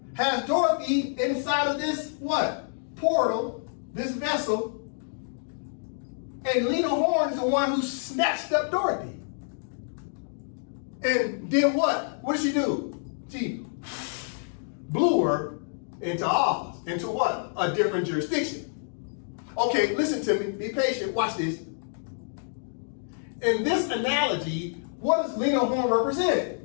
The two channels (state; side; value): silent; right; digital silence